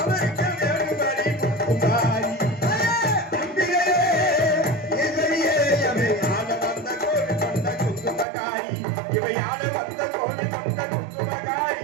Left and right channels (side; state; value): left; drops out; at 8.2 s